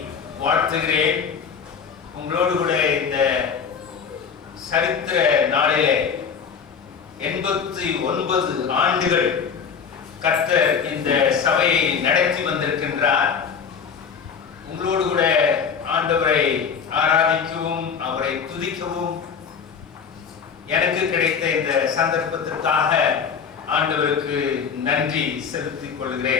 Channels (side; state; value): right; quieter; 6.5 dB